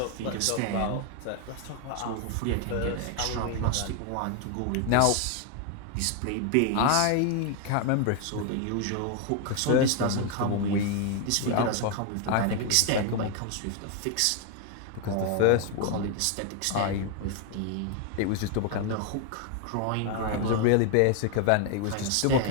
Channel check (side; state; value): both; different; correlation 0.01